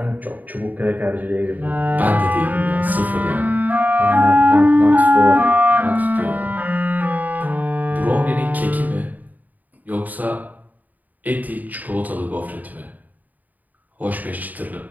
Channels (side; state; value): left; late; 0.081 ms